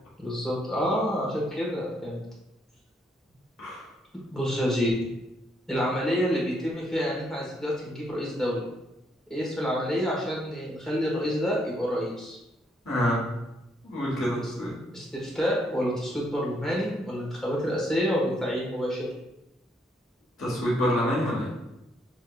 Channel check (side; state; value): both; normal; correlation 0.73